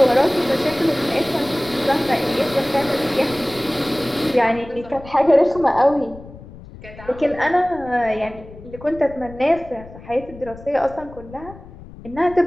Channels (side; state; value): left; noise; rumble, 17 dB below the sound